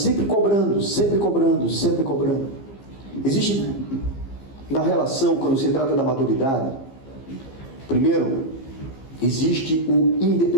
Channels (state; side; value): late; right; 15 ms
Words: cobrando, sempre cobrando, sempre cobrando. Existe na relação, quando se trata da maturidade, primeiro, existe o